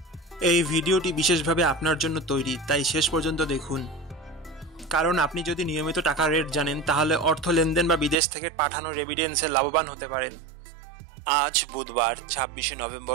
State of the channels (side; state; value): left; drops out; at 8.2 s